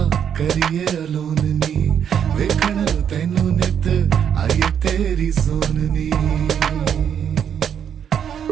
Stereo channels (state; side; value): quieter; left; 8.5 dB